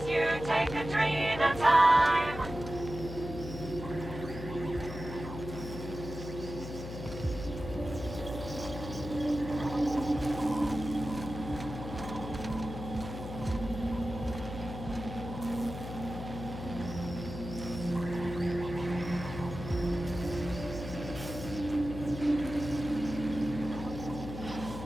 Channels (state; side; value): noise; left; hum, 9 dB below the sound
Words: you take a dream at a time.